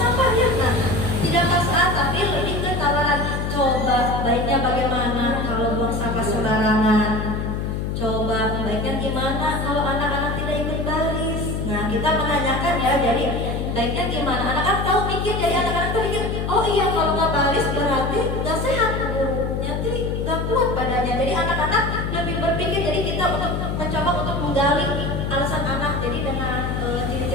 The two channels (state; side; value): noise; left; hum, 2 dB below the sound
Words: ya. Nah, tidak paksaan tapi lebih ke tawaran. Coba baiknya bagaimana kalau buang sampah sembarangan? Coba baiknya gimana kalau anak-anak tidak ikut baris? Nah, kita menanyakan ya. Jadi baiknya gimana? Anak-anak tahu mikir. Jadi anak-anak tuh mikir, oh iya kalau nggak baris berarti nggak sehat. Nanti nggak kuat badannya. Jadi anak-anak lebih berpikir. Jadi kita untuk mencoba untuk menggali alasan anak. Jadi dengan